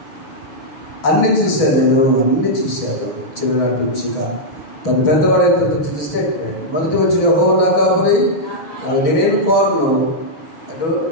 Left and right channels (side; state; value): right; late; 6.2 ms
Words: అన్నీ చూశాను, నేను అన్నీ చూశాను చిన్ననాటి నుంచిగా. తను పెద్దవాడైతే స్టేట్మెంట్ మొదటి వచ్చి యెహోవా నా కాపరి, నేనేం కోరను,